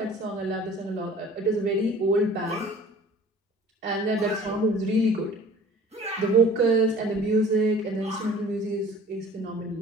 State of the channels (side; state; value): both; normal; correlation 0.47